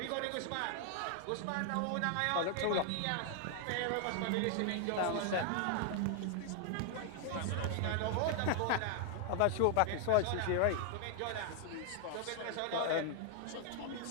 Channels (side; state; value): both; different; correlation 0.00